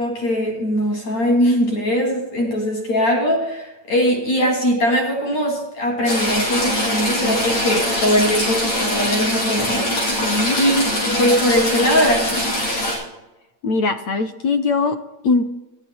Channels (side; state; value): right; late; 8.7 ms